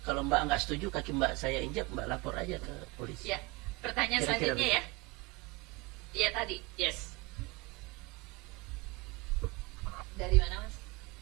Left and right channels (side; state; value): left; quieter; 24.8 dB